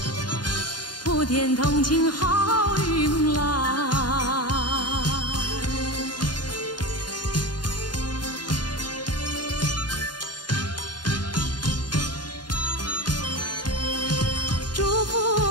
普天同庆好运来。祝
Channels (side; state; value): right; late; 0.70 ms